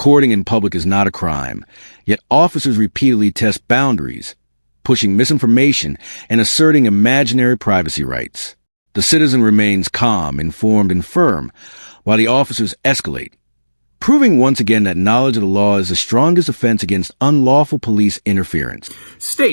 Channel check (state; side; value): inverted; both; correlation -1.00